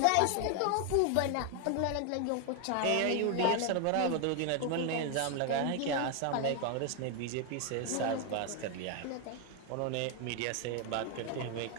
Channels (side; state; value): both; different; correlation 0.01